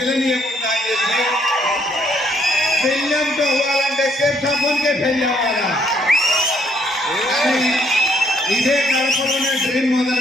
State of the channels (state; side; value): normal; both; correlation 0.68